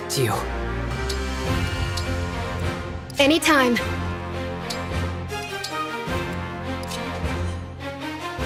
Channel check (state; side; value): identical; both; correlation 1.00